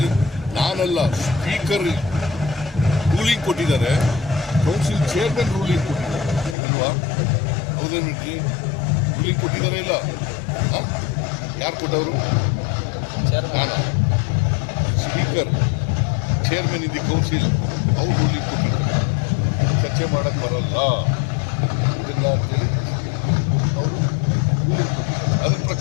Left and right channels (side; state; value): right; drops out; at 6.6 s